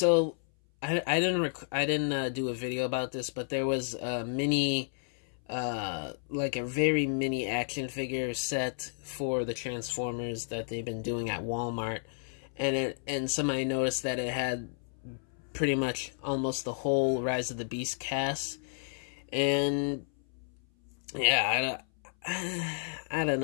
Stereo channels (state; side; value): silent; right; 57 dB below the other